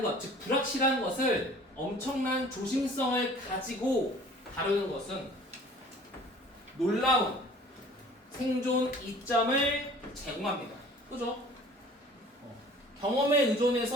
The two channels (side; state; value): both; normal; correlation 0.48